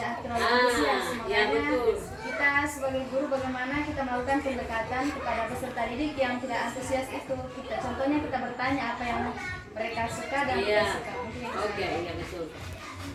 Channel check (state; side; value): identical; both; correlation 1.00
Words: terlalu antusias. Ya, Makanya betul. kita sebagai guru bagaimana kita melakukan pendekatan kepada peserta didik yang tidak antusias itu. Contohnya kita bertanya apa yang mereka suka dan tidak suka. Mungkin itu. Oke, iya betul.